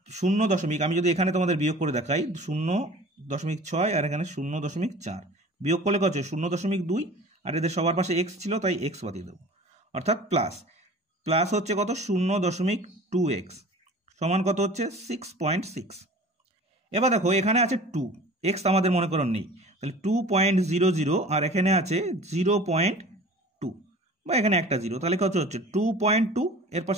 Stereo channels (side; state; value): both; normal; correlation 0.42